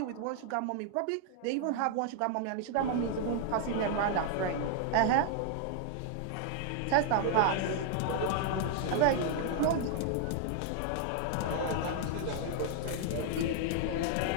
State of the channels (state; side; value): different; both; correlation 0.00